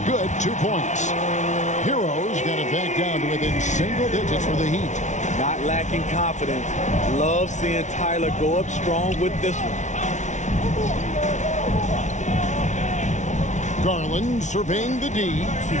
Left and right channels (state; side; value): late; right; 0.35 ms